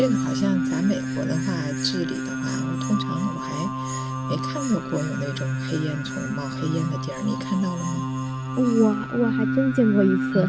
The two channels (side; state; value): left; noise; rumble, 23 dB below the sound